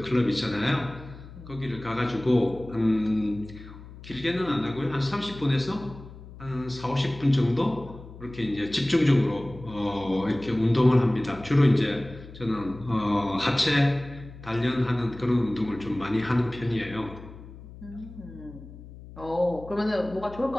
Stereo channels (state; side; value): noise; left; hum, 16 dB below the sound